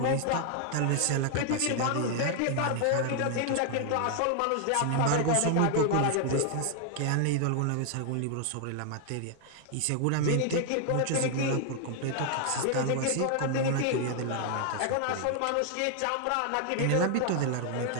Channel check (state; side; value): different; both; correlation 0.00